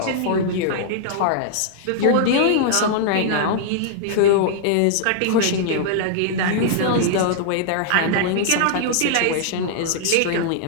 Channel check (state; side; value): different; both; correlation -0.01